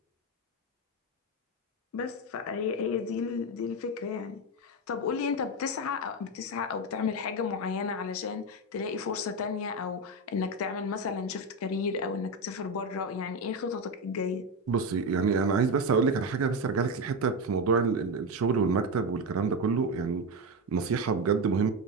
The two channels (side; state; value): both; normal; correlation 0.13